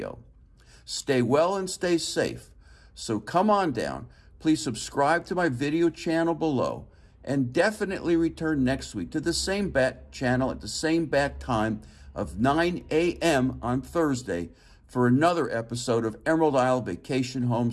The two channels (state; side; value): identical; both; correlation 1.00